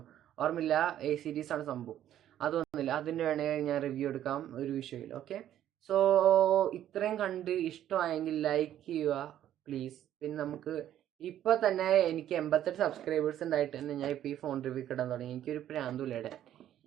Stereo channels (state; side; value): quieter; left; 11.5 dB